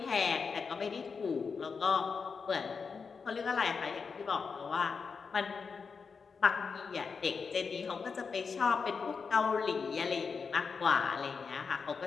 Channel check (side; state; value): right; quieter; 5.4 dB